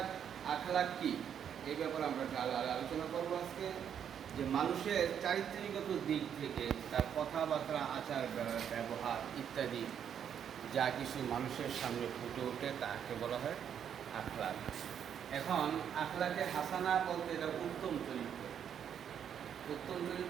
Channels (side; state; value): left; quieter; 8.6 dB